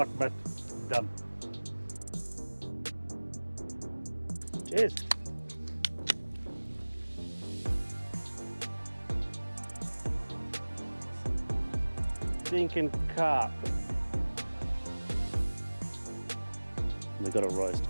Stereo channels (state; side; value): inverted; both; correlation -1.00